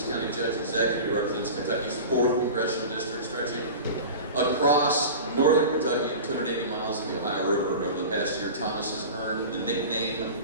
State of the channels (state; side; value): inverted; both; correlation -0.33